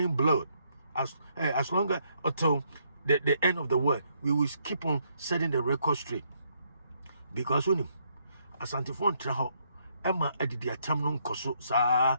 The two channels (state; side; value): inverted; both; correlation -0.73